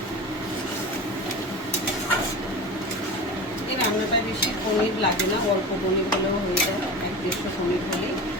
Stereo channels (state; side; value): normal; both; correlation 0.30